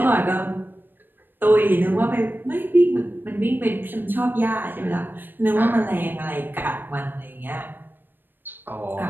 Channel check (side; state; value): left; late; 0.094 ms